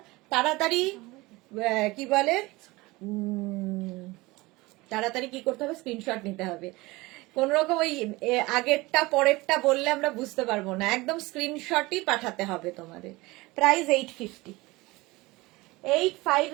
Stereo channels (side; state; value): left; quieter; 21.7 dB